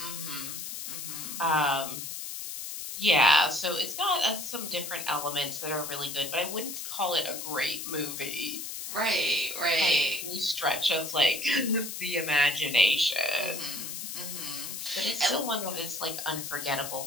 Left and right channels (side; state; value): left; noise; hiss, 7 dB below the sound